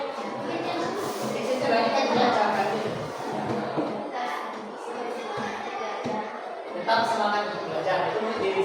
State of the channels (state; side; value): identical; both; correlation 1.00